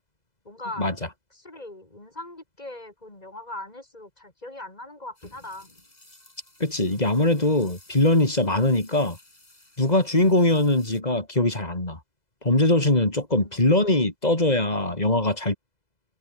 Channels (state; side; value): late; right; 2.0 ms